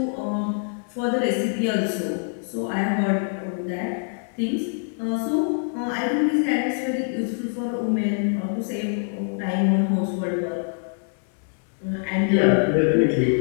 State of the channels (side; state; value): right; silent; 62 dB below the other